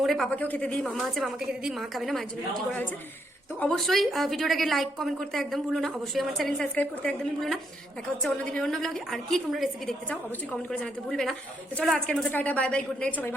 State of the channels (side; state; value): both; normal; correlation 0.76